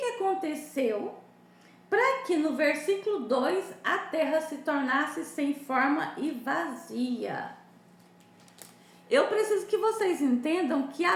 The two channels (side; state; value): both; identical; correlation 1.00